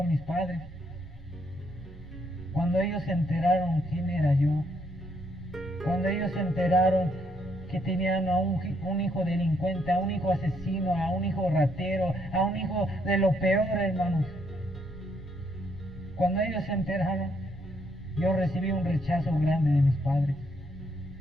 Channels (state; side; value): normal; both; correlation 0.73